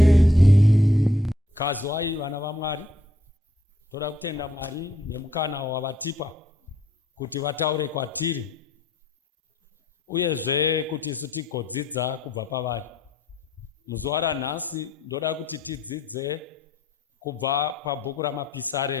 Kazwai vana vaMwari, toda kutenda Mwari nemukana wavatipa kuti vataure kwatiri uyezve kuti isu tigodzidza kubva pavari. Muzuva ranhasi ndoda kuti tidzidze kubva pabhuku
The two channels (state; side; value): normal; both; correlation 0.67